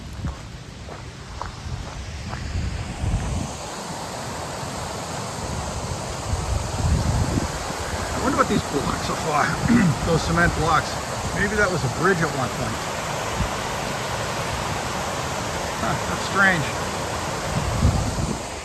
I wonder what these blocks are for. Those cement blocks. Maybe that was a bridge at one point. Huh, that's strange.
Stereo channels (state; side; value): identical; both; correlation 1.00